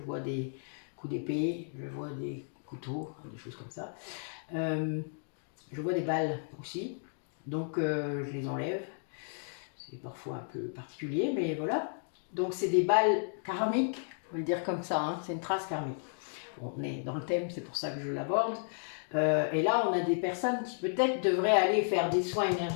des coups d'épée, je vois des couteaux, des choses comme ça. Je vois des balles aussi, donc je les enlève. C'est parfois un peu particulier, mais voilà. Donc c'est des balles karmiques, on va le dire comme ça, hein, c'est une trace karmique. On est dans le thème, c'est pour ça que je l'aborde. Et là, on a des personnes qui peut-être devraient aller faire des soins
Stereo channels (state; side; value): silent; right; digital silence